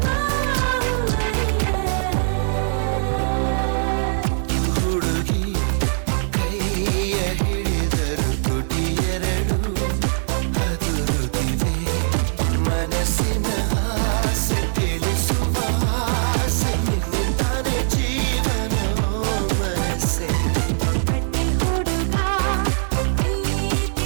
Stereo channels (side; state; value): left; silent; 65 dB below the other